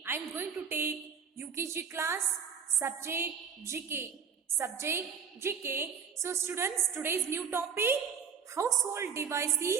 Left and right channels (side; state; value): left; quieter; 6.5 dB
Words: I am going to take UKG class subject GK. So students, today's new topic household